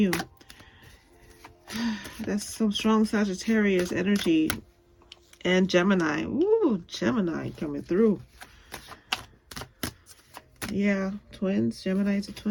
That's some strong Sagittarius energy. And Gemini. Ooh, Gemini coming through. Yeah, twins. Geminis are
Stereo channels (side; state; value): both; identical; correlation 1.00